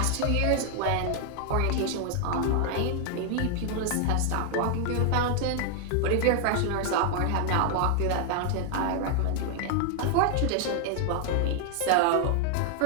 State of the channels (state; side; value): different; both; correlation 0.00